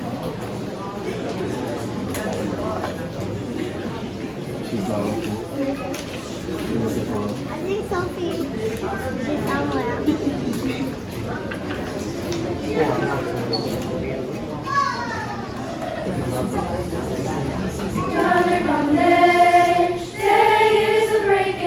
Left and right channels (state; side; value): identical; both; correlation 1.00